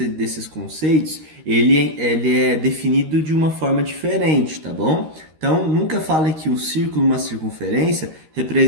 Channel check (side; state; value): left; late; 13 ms